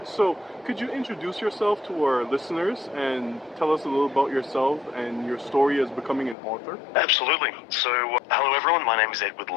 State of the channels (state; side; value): drops out; right; at 6.4 s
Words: So, could you introduce yourself to our listeners and tell us a little about yourself and your story as becoming an author? Absolutely. So, hello everyone, my name is Edward